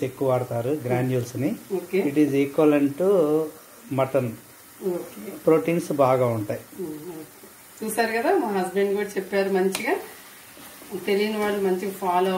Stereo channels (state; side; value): identical; both; correlation 1.00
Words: ఎక్కువ వాడతారు గ్రాన్యూల్స్ ని. It is equivalent to mutton. Proteins బాగా ఉంటాయి. చూసారు కదా, మా హస్బెండ్ కూడా చెప్పారు మంచిగా. తెలియని వాళ్ళు మంచిగా ఫాలో